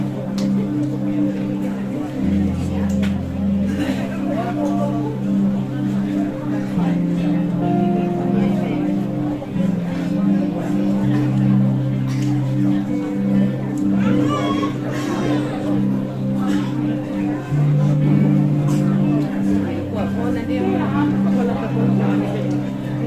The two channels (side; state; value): both; identical; correlation 1.00